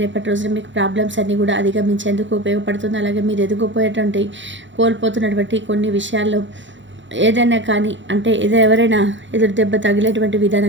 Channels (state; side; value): late; left; 0.54 ms